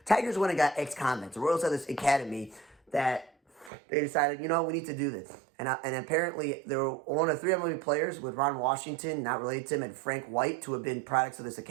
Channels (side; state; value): left; drops out; at 3.7 s